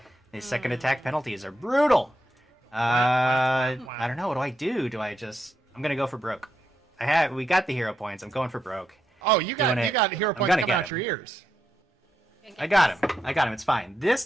These second attack penalties are brutal. I don't know. What do? Do I just? I'm gonna go for broke. We got the hero points. I'm going for broke. Oh, you got Doing it. hero I'm points gonna coming get out your ears. I got him. It's fine. This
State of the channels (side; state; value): both; normal; correlation 0.83